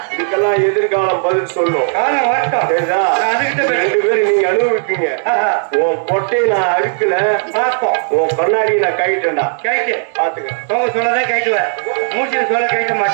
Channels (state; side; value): silent; left; digital silence